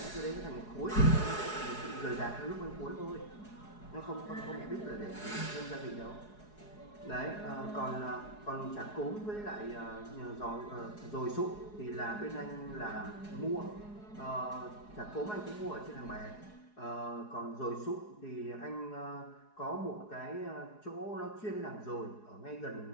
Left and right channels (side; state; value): right; late; 4.8 ms